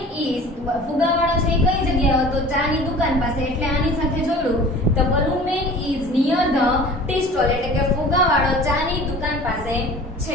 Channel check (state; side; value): normal; both; correlation 0.43